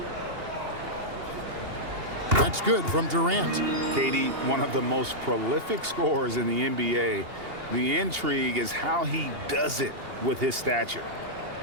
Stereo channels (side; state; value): left; late; 2.8 ms